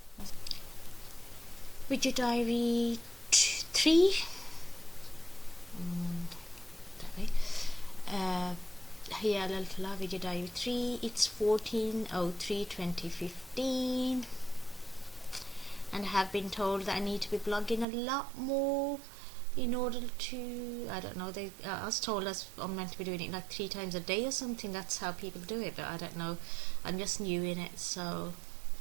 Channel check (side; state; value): left; drops out; at 17.9 s